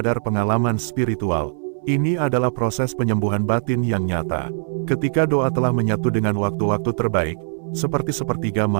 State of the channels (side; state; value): left; silent; 60 dB below the other